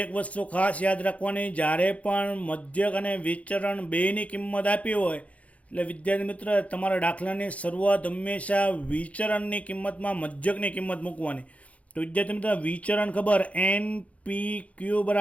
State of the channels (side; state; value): right; late; 0.066 ms